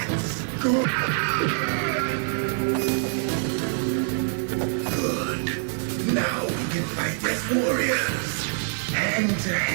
good. Good. Now we can fight as warriors. Hand to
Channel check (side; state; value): left; silent; 62 dB below the other